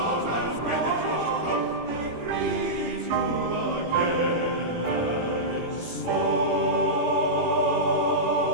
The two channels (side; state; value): left; late; 18 ms